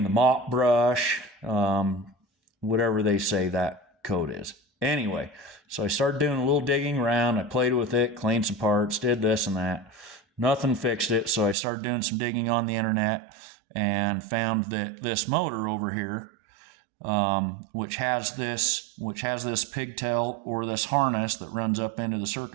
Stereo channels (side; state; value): left; drops out; at 11.6 s